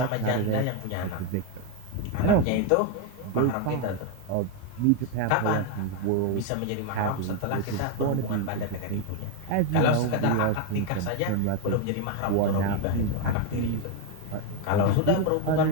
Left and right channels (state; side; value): different; both; correlation 0.01